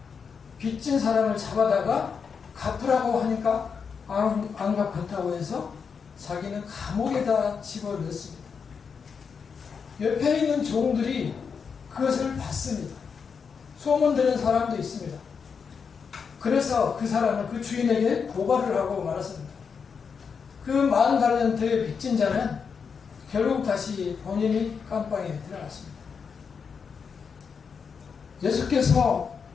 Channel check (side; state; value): right; quieter; 6.0 dB